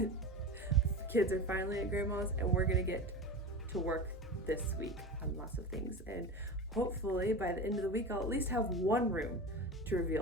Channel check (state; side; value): normal; both; correlation 0.28